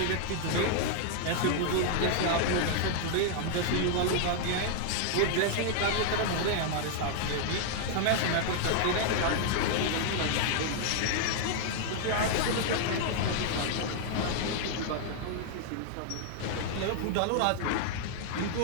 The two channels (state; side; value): different; both; correlation -0.01